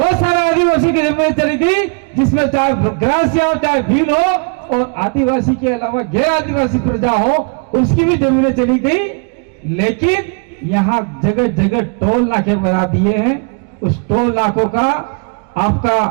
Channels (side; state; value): left; quieter; 37.1 dB